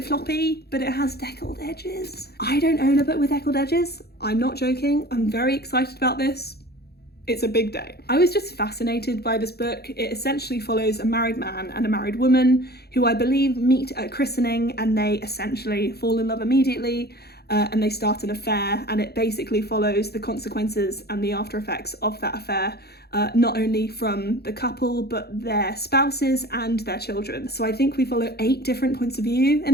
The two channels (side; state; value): right; late; 0.46 ms